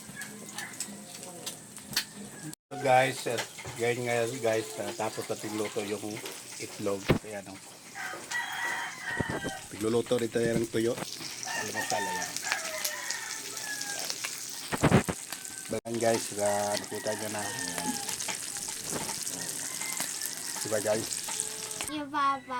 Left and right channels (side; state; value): both; identical; correlation 1.00